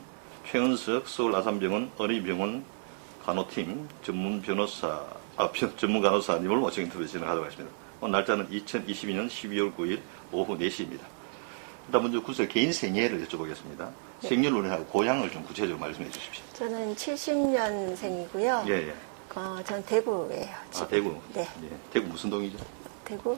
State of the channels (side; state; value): left; silent; digital silence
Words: 최은석 서울 아산병원 어린이병원 간호팀 전문 간호사님을 모시고 인터뷰 진행하도록 하겠습니다. 오늘 날짜는 2022년 12월 9일 오후 4시입니다. 일단 먼저 구술 개인 생애를 여쭤보겠습니다. 네. 생년월일하고 고향을 좀 구체적으로 말씀해 주십시오. 저는 70년생이고요. 예, 예. 전 대구예요. 지금. 대구. 네. 예. 대구 무슨 동이죠?